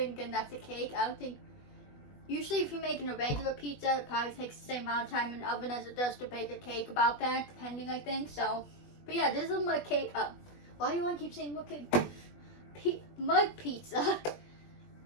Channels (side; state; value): right; late; 20 ms